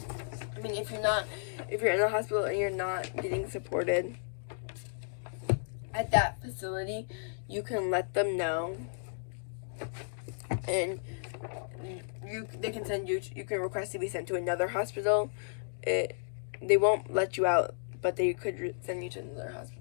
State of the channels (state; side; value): silent; right; digital silence